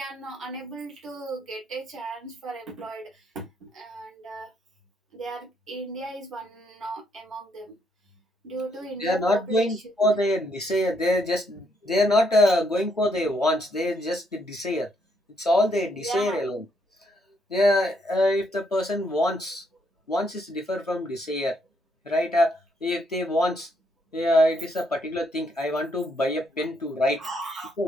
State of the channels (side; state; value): both; normal; correlation 0.73